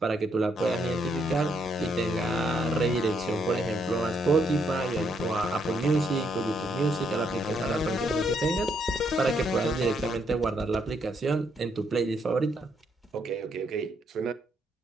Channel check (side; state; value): both; normal; correlation 0.74